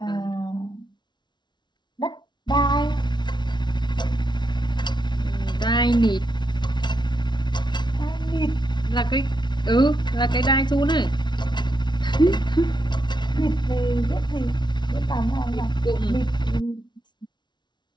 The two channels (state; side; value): late; right; 0.21 ms